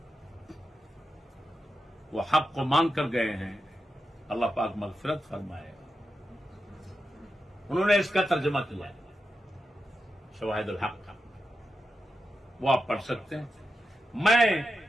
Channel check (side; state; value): both; normal; correlation 0.89